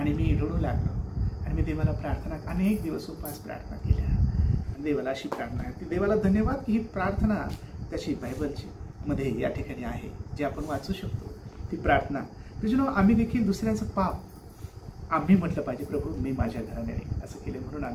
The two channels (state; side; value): identical; both; correlation 1.00